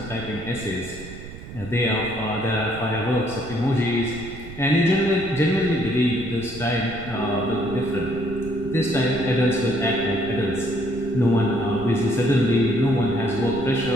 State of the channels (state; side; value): noise; right; rumble, 13 dB below the sound